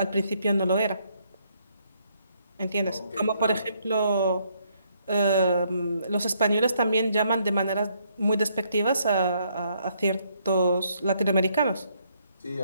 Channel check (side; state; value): both; inverted; correlation -0.71